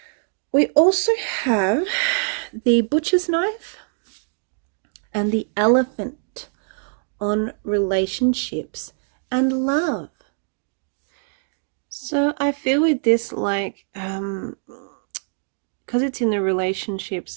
We also have the butcher's knife and the elephant on relationships and love. So I feel with this, like, because it's in the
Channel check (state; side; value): silent; left; digital silence